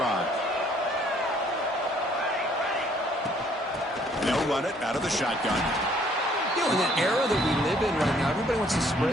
They'll run it out of the shotgun. You know, in that era that we live in right now, everybody wants to spread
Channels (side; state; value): both; normal; correlation 0.62